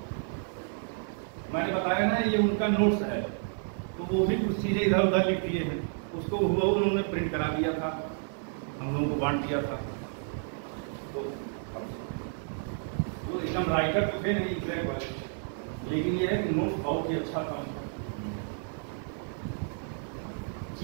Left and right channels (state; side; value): silent; left; 57 dB below the other